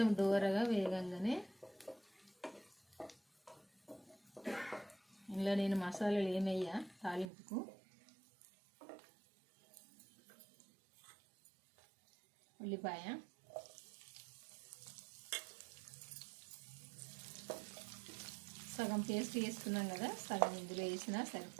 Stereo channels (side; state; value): left; drops out; at 7.3 s